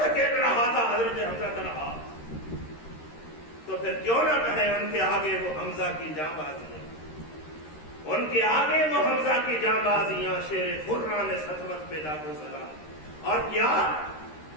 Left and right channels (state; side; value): late; right; 13 ms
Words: رہا تھا حضرت حمزہ تنہا۔ تو پھر کیوں نہ کہیں ان کے آگے وہ حمزہ کی جاں بازیاں، ان کے آگے وہ حمزہ کی جاں بازیاں، شیر خران سطوت پہ لاکھوں سلام۔ اور کیا